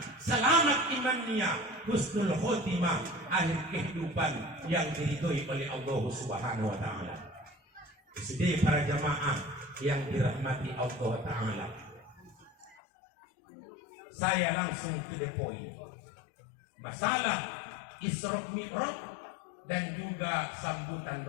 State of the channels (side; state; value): right; drops out; at 12.8 s